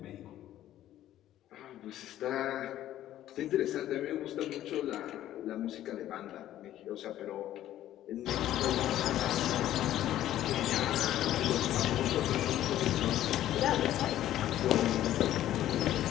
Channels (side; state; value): right; quieter; 12.8 dB